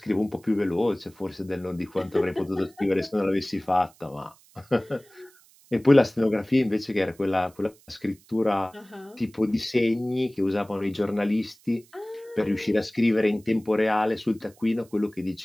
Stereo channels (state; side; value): noise; right; hiss, 28 dB below the sound